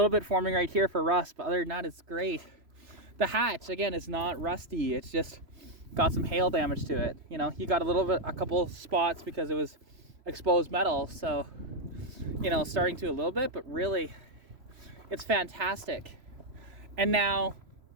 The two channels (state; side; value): late; left; 3.0 ms